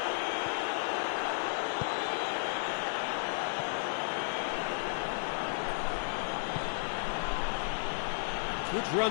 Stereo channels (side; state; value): right; silent; digital silence